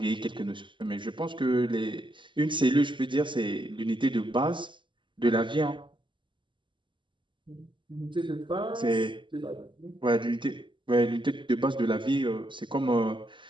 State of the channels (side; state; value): left; late; 0.24 ms